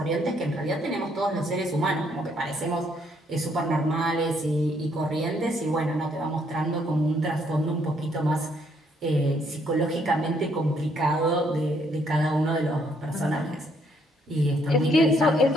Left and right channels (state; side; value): normal; both; correlation 0.69